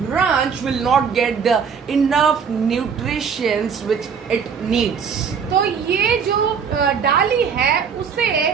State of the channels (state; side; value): quieter; left; 6.5 dB